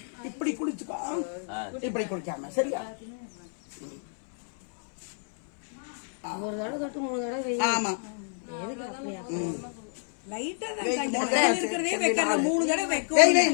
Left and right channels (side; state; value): right; silent; 58 dB below the other